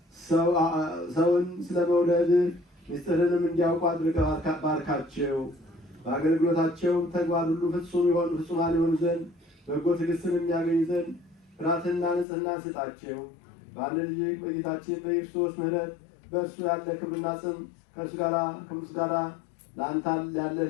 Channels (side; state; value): right; drops out; at 12.2 s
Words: ሰውን ስለ መውደድ ምስጢርንም እንዲያውቁ አድርገህ ባርካቸው። በአገልግሎታቸውም ተግባር ሁሉ ፍጹማን የሆኑ ዘንድ በጎ ትዕግስትን የሚያገኙ ዘንድ ፍርሃትና ንጽሕና ስጣቸው። በአንድ ልጅ በጌታችን በክርስቶስ ምሕረት በእርሱ ያለ ክብርና ጽም ከእርሱ ጋር ለአንተ ያለ